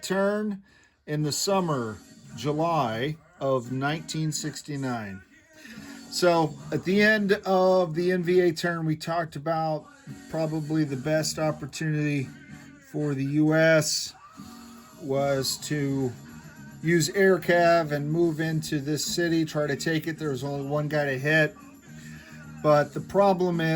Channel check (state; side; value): identical; both; correlation 1.00